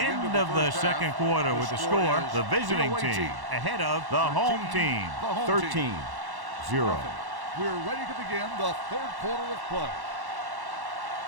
of the second quarter with the score. The visiting team ahead of the home team, 13-0. We're ready to begin the third quarter of play.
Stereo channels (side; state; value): left; late; 1.1 ms